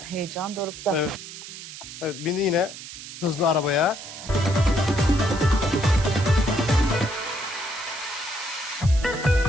Heyecan dorukta. Evet. Evet, bindi yine hızlı arabaya.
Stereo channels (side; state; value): right; noise; hiss, 12 dB below the sound